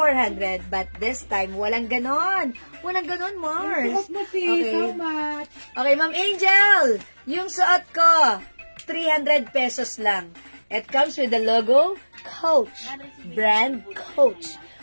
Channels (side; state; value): both; inverted; correlation -1.00